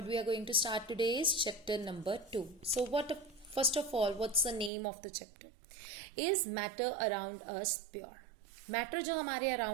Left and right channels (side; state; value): left; drops out; at 4.7 s